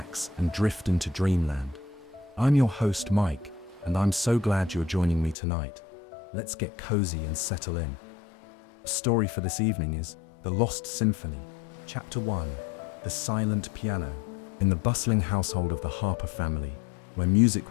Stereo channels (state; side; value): drops out; right; at 5.4 s